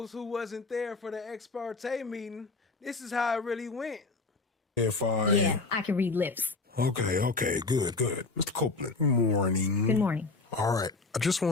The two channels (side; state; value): right; quieter; 3.7 dB